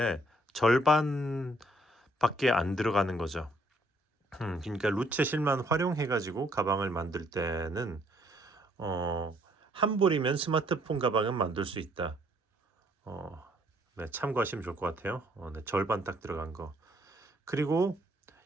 절반 밖에 안 들어가는 거죠. 그러니까 루체 실만 활용해 가지고 가방을 만들 때는 한 볼이면 스마트폰 가방은 만들 수 있다. 네, 참고하시면 좋을 것 같아요. 네, 절반 딱 들어간 거. 그리고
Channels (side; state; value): both; normal; correlation 0.66